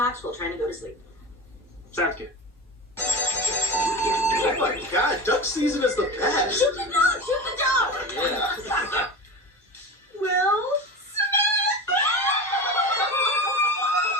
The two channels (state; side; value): normal; both; correlation 0.28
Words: while trying to go to sleep. Sounds good. Oh my god, duck season is the best. Shoot the dog! Shoot the dog! Yeah. Will